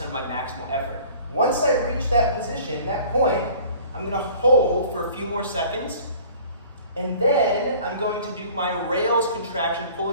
of my maximal effort. Once I reach that position, that point, I'm gonna hold for a few more seconds, and then I'm going to do my rails contraction,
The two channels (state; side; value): inverted; both; correlation -0.49